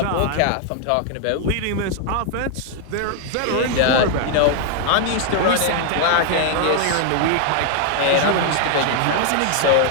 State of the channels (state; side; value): different; both; correlation 0.00